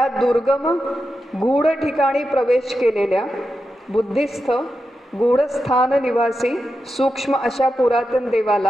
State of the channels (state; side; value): normal; both; correlation 0.89